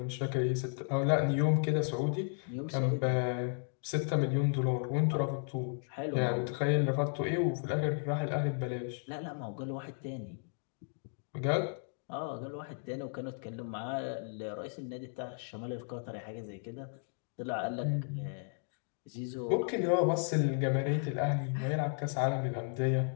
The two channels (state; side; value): silent; right; 55 dB below the other